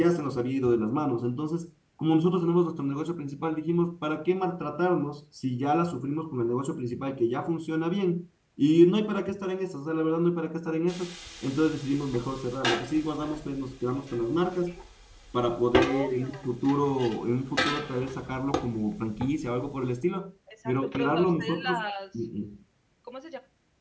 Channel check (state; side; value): identical; both; correlation 1.00